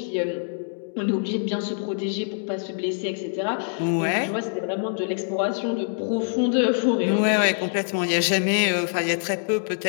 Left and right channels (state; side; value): silent; right; digital silence